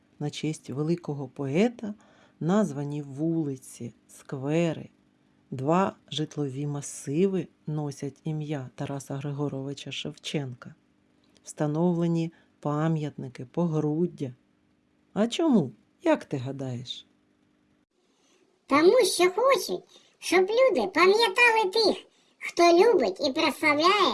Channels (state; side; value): identical; both; correlation 1.00